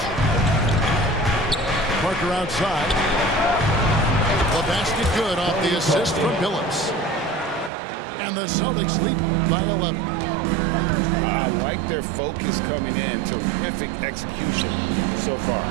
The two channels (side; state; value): left; drops out; at 7.7 s